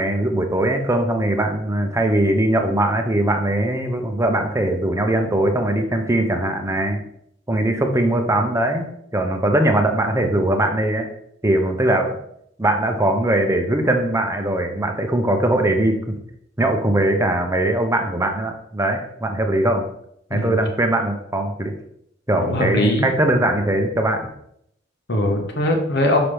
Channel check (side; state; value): both; normal; correlation 0.59